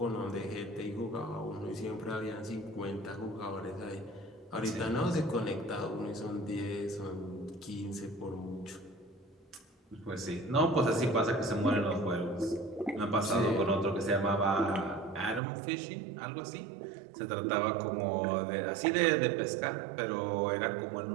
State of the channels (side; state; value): left; drops out; at 15.4 s